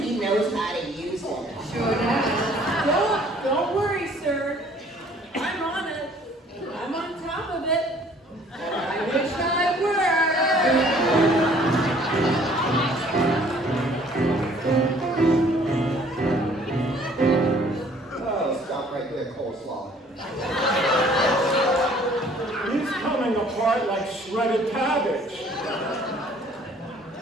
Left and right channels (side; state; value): both; normal; correlation 0.56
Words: he knows how to use it. Sure does. Don't worry, sir. I'm on it. I'm on top of it. I wish I were. Oh, stop right there, coleslaw. He's coming apart like shredded cabbage.